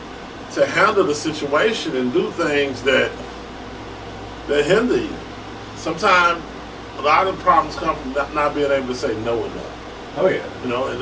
handle the situation and do things that hinder you. Sometimes a lot of problems come from not being able to say no enough. Oh yeah. You know, and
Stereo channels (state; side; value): identical; both; correlation 1.00